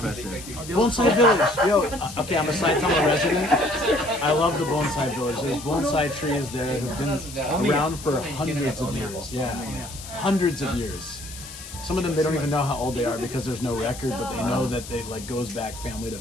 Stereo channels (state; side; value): noise; left; hiss, 13 dB below the sound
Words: Bonsai Village. Yo, okay, I'm a Saitama resident. I love the Bonsai Village. There's bonsai trees there who've been around for hundreds of years. Yeah, hundreds of years. Some of them, they don't even know how old they are because there's no record, but they know that they like goes back family to